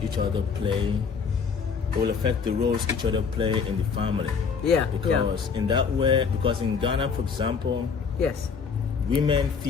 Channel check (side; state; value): right; quieter; 5.8 dB